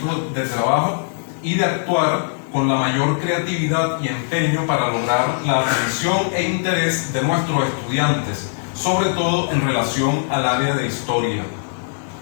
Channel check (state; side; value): silent; right; 65 dB below the other